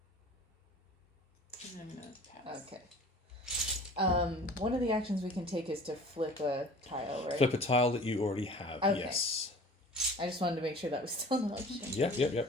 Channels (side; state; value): both; normal; correlation 0.45